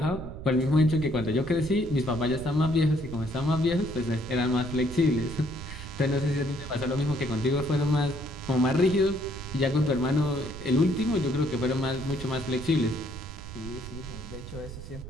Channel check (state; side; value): noise; right; rumble, 11 dB below the sound